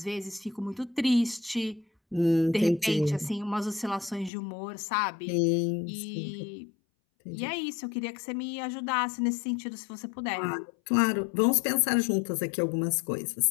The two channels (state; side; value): drops out; right; at 4.3 s